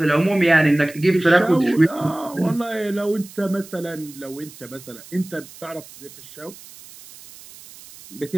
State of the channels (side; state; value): right; noise; hiss, 19 dB below the sound